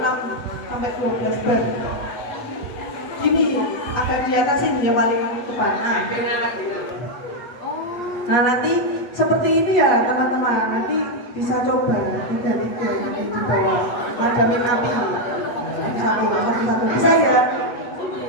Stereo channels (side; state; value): right; late; 8.3 ms